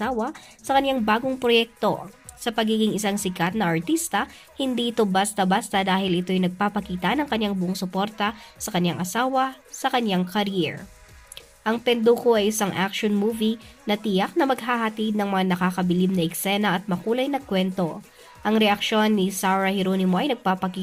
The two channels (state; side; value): identical; both; correlation 1.00